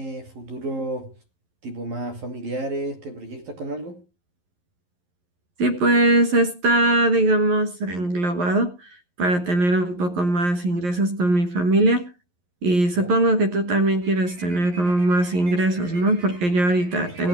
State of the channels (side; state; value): left; late; 11 ms